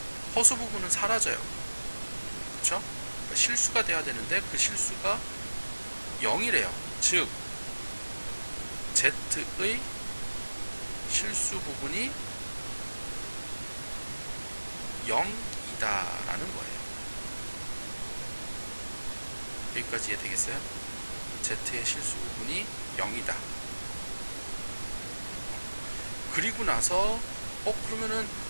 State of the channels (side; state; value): both; inverted; correlation -1.00